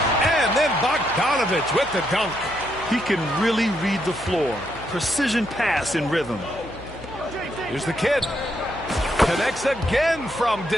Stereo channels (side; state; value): left; noise; hum, 18 dB below the sound